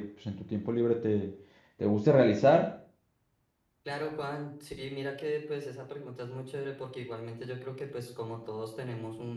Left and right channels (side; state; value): both; identical; correlation 1.00